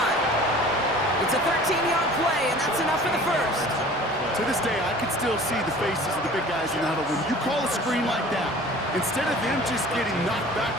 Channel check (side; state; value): both; normal; correlation 0.45